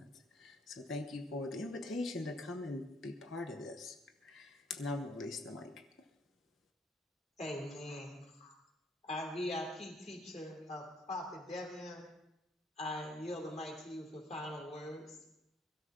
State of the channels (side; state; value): both; normal; correlation 0.66